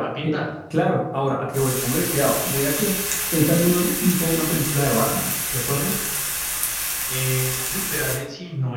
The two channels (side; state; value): both; identical; correlation 1.00